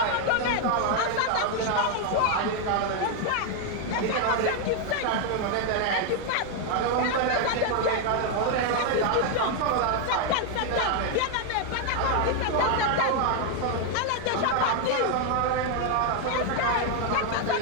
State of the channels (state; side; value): different; both; correlation 0.01